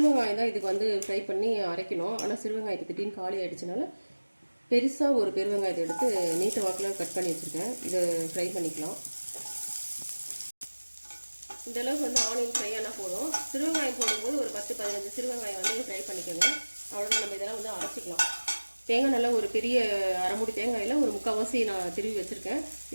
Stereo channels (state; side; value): inverted; both; correlation -1.00